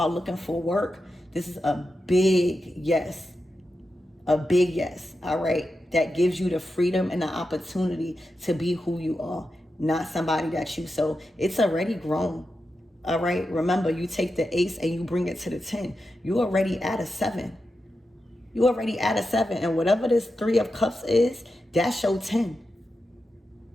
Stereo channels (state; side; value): normal; both; correlation 0.89